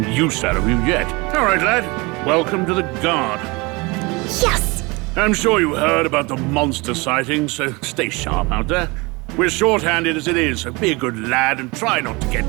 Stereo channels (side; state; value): left; quieter; 25.8 dB